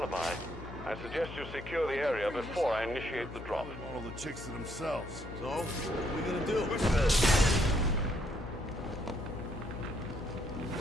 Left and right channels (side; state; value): left; noise; hum, 12 dB below the sound